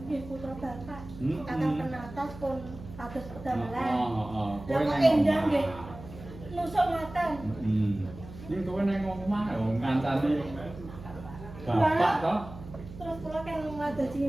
nggih putra bapak. Kakang Penatas pun kados kedamelan. Lah kok endah nggih nusuk ngaten. Ning kowe nang omah lho ngancani bapak to. Terus kula kan ngadosi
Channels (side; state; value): right; noise; hum, 14 dB below the sound